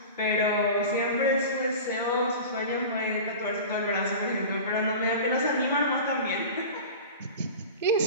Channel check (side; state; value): both; inverted; correlation -0.34